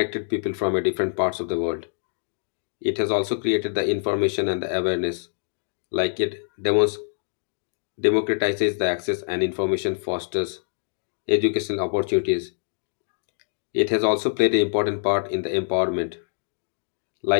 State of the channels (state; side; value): silent; right; digital silence